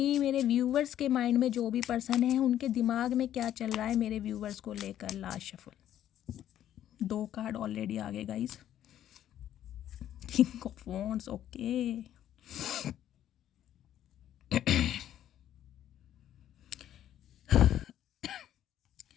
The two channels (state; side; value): quieter; right; 11.4 dB